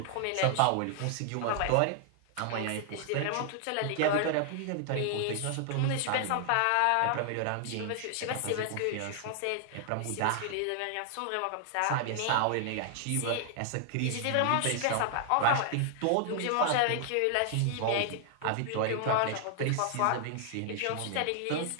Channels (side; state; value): both; different; correlation 0.00